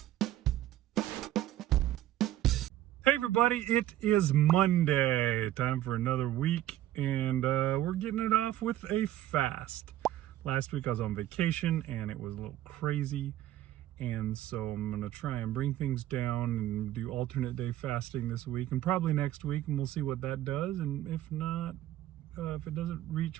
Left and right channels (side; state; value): left; quieter; 13.5 dB